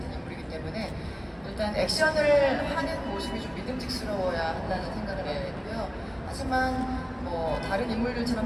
인물이기 때문에 일단 액션을 하는 모습이 좀 믿음직스러워야 한다는 생각을 하고 있고요. 하지만 다른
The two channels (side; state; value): both; identical; correlation 1.00